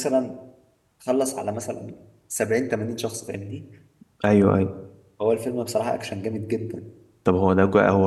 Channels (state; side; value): identical; both; correlation 1.00